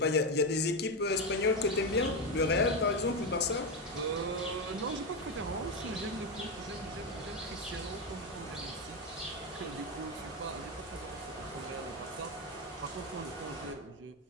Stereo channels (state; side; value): normal; both; correlation 0.11